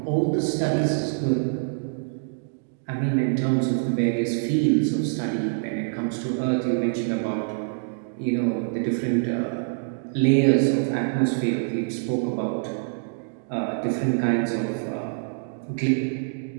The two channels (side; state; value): left; silent; digital silence